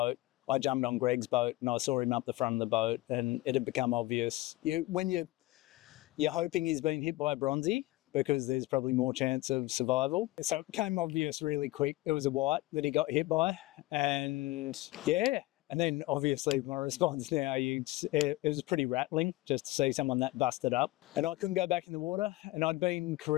I jumped on Greg's boat, and I saw him up the front of the boat, and it had become obvious. When you're hoping he's been hit by a bronzy, because there's probably more chance of survival. So it became obvious really quick. It was a white that he got hit by. And yeah, and then obviously my response now, it was pretty rattling just to see someone that busted up. And I couldn't go back in the water. And I'd been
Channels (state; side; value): quieter; right; 18.5 dB